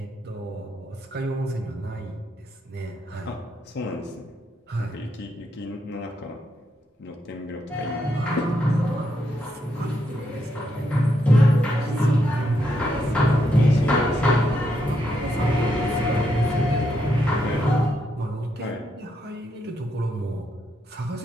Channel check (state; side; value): normal; both; correlation 0.79